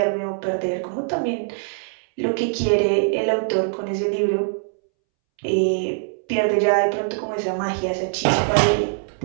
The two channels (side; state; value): left; silent; 64 dB below the other